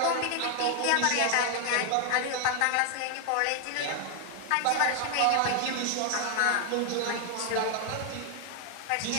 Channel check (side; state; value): both; different; correlation 0.00